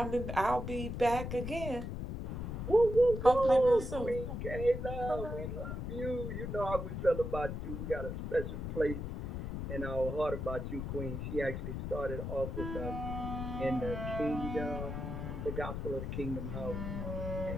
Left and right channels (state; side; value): noise; left; rumble, 4 dB below the sound